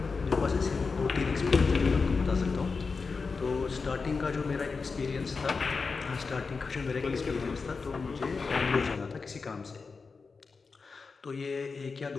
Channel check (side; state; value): right; quieter; 4.6 dB